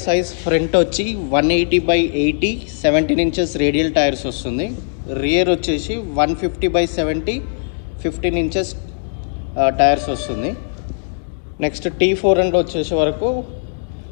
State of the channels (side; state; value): right; silent; digital silence